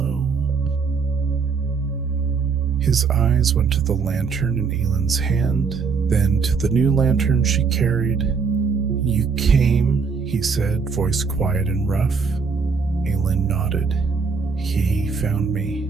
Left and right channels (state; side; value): quieter; left; 5.3 dB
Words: His eyes went to the lantern in Aelin's hand, then to the new lantern she carried. "You came," he said, voice quiet and rough. Aelin nodded. "He found me."